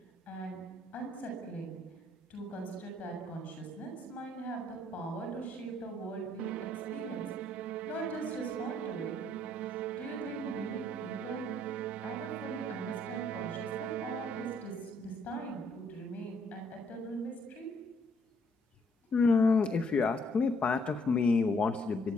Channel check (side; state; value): both; normal; correlation 0.67